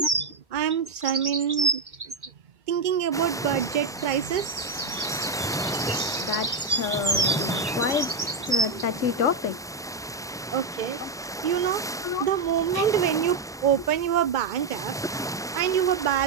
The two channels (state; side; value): quieter; left; 3.7 dB